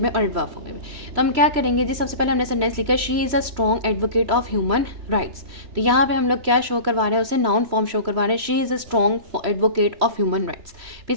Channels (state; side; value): late; left; 3.0 ms